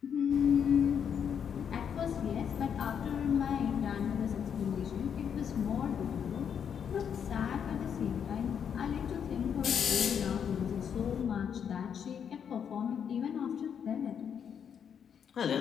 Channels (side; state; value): right; quieter; 7.8 dB